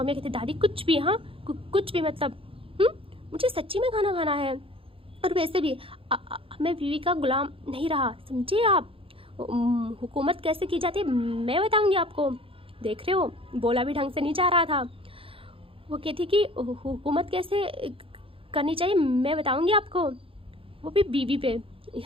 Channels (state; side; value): late; left; 0.26 ms